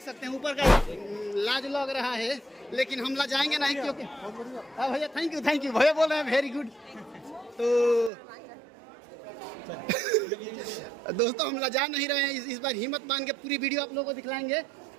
सकते हैं ऊपर का लाज लग रहा है, लेकिन हम ला जाएंगे नहीं क्योंकि हाँ भैया थैंक यू भैया बोल रहे हैं वेरी गुड। तो दोस्तों हम ला जा नहीं रहे हैं, इस बार हिम्मत बांध के पूरी वीडियो आप लोगों को दिखलाएंगे।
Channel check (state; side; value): drops out; left; at 8.1 s